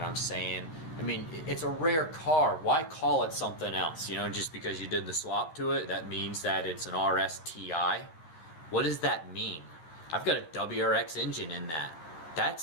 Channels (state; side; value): late; right; 12 ms